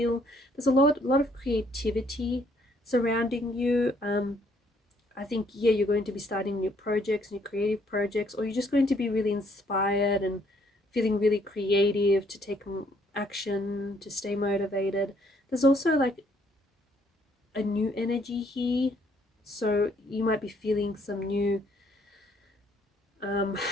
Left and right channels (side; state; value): both; normal; correlation 0.67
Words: There's a lot of creativity surrounding you. I think, yeah, you're going to be starting new projects, new creative projects, or you're just going to be really inspired and feeling really creative to take action, to stay motivated. There's also like a new energy here, so you might be feeling some new